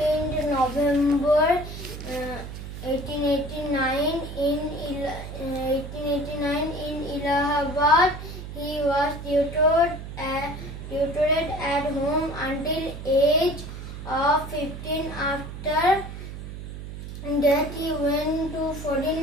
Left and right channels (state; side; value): noise; right; hum, 10 dB below the sound